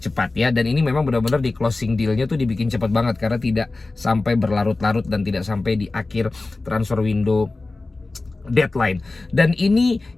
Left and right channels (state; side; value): quieter; right; 3.3 dB